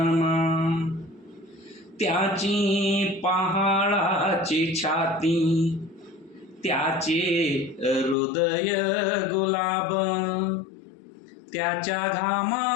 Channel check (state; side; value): drops out; right; at 8.2 s